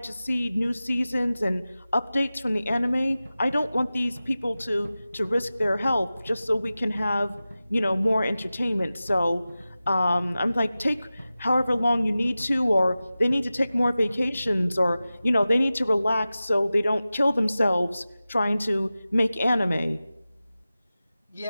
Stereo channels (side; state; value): both; inverted; correlation -0.95